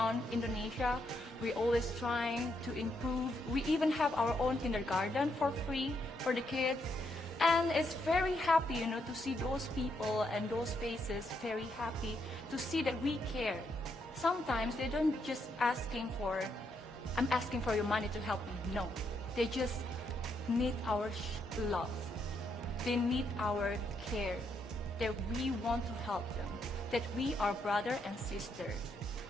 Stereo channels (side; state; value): both; normal; correlation 0.77